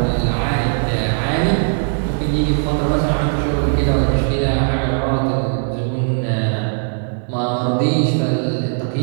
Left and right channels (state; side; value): silent; left; digital silence